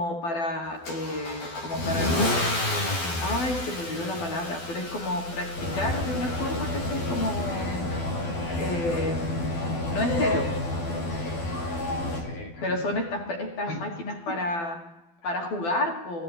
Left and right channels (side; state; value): right; late; 12 ms